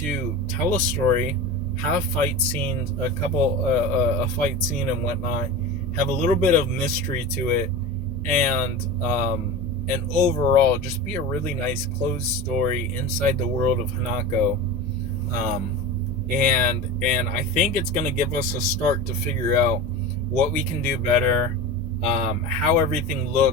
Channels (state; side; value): normal; both; correlation 0.29